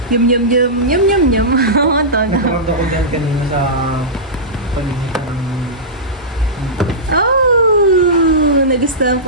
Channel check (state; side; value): normal; both; correlation -0.16